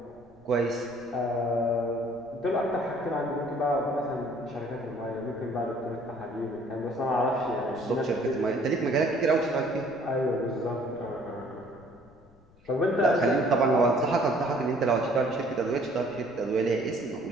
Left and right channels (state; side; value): noise; left; rumble, 29 dB below the sound